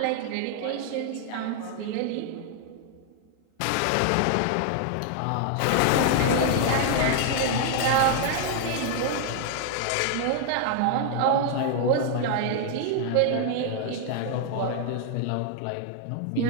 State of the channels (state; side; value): different; both; correlation 0.00